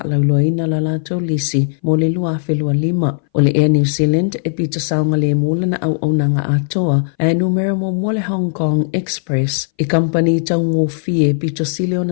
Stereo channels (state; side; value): silent; right; 62 dB below the other